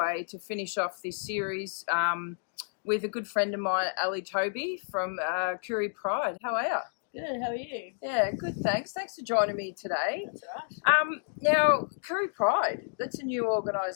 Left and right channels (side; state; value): right; silent; digital silence